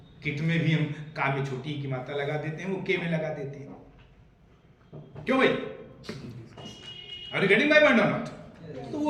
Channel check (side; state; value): both; identical; correlation 1.00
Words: किट में भी हम का में छोटी की मात्रा लगा देते हैं, वो के में लगा देते हैं। क्यों भाई? Are you getting my point or not? तो